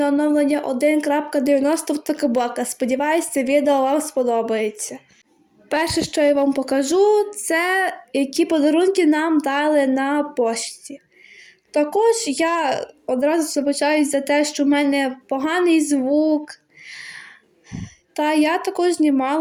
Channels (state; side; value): identical; both; correlation 1.00